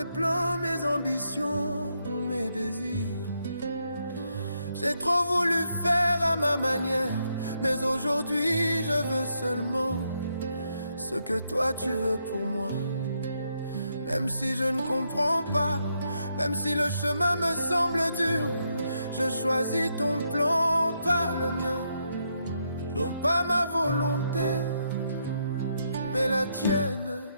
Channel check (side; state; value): both; inverted; correlation -0.78